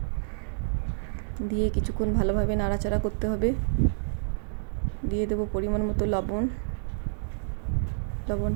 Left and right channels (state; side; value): silent; left; digital silence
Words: দিয়ে কিছুক্ষণ ভালোভাবে নাড়াচাড়া করতে হবে। দিয়ে দেব পরিমাণ মতো লবণ।